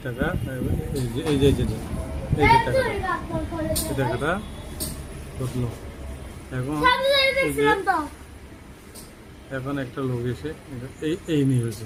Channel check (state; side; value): identical; both; correlation 1.00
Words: টাকা, এই যে এই যে এই যে এই যে টাকাটা, এই টাকাটা ঢুকলো। এখন এই যে এখন একটা লোক এসে এই নিয়ে হয়েছে,